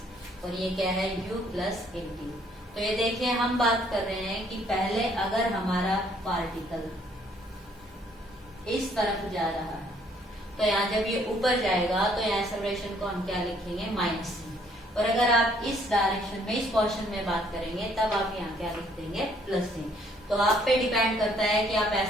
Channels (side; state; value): both; normal; correlation 0.64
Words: और ये क्या है u प्लस at। तो ये देखिए हम बात कर रहे हैं कि पहले अगर हमारा पार्टिकल इस तरफ जा रहा है तो यहाँ जब ये ऊपर जाएगा तो यहाँ एक्सेलरेशन को हम क्या लिखेंगे, माइनस c। और अगर आप इस डायरेक्शन में, इस पोर्शन में बात करेंगे तब आप यहाँ क्या लिख देंगे, प्लस c। तो आप पे डिपेंड करता है कि आप